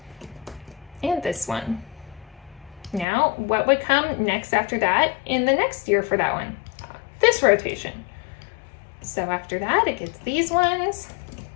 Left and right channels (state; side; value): drops out; right; at 3.1 s